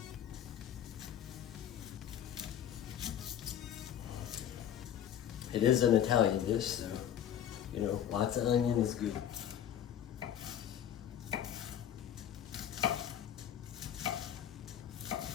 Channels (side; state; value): right; quieter; 10.0 dB